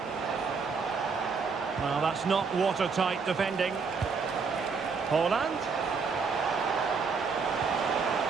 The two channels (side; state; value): left; quieter; 5.1 dB